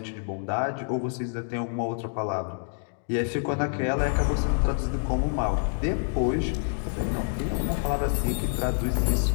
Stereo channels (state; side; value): silent; right; digital silence